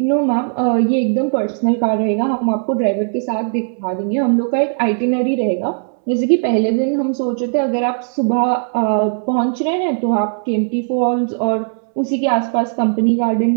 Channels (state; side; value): silent; left; 67 dB below the other